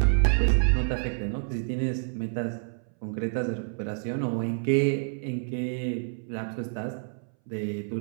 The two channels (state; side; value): silent; left; 59 dB below the other